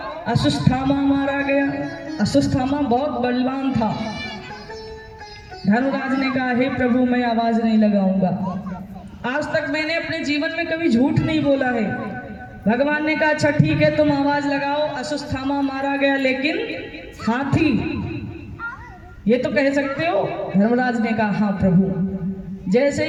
अश्वत्थामा मारा गया। अश्वत्थामा बहुत बलवान था। धर्मराज ने कहा, हे प्रभु, मैं आवाज नहीं लगाऊंगा, आज तक मैंने अपने जीवन में कभी झूठ नहीं बोला है। भगवान ने कहा, अच्छा ठीक है, तुम आवाज लगाओ, अश्वत्थामा मारा गया, लेकिन हाथी ये तो कह सकते हो? धर्मराज ने कहा, हाँ प्रभु। जैसे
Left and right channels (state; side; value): identical; both; correlation 1.00